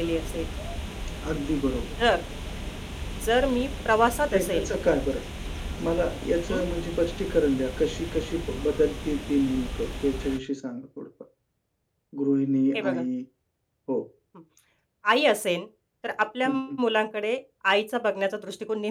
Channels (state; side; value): identical; both; correlation 1.00